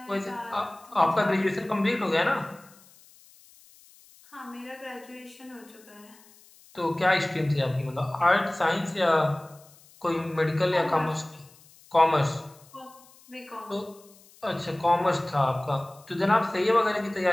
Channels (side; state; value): left; noise; hiss, 26 dB below the sound